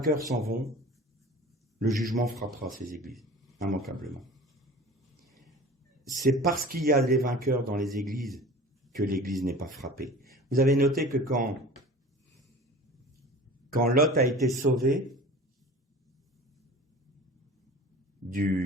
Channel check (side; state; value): both; normal; correlation 0.40